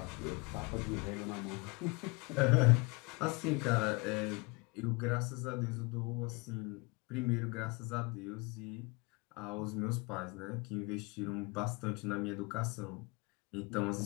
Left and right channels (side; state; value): right; quieter; 27.8 dB